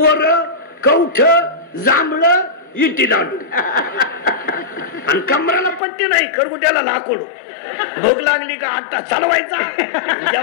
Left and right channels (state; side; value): drops out; right; at 5.8 s